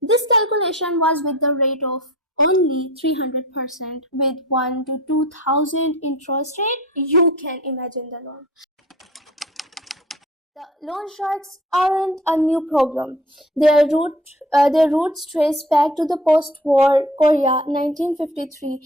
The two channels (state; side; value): normal; both; correlation 0.43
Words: This calculation was with the rate of only 300% with 1 to 2,000 interest rate. You can imagine the loan. The loan sharks aren't a new problem. Their roots trace back to the post-war Korea